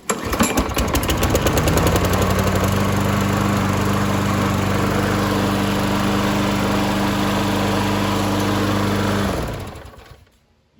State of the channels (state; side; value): identical; both; correlation 1.00